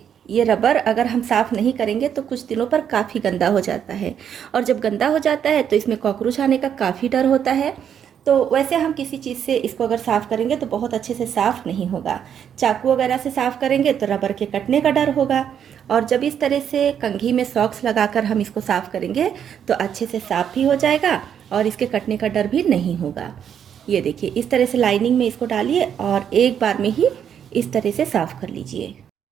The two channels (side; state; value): left; quieter; 8.6 dB